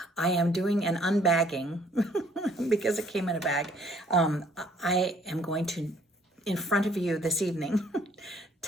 I am doing an unbagging because it came in a bag. I am going to, in front of you this evening,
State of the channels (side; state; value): both; normal; correlation 0.61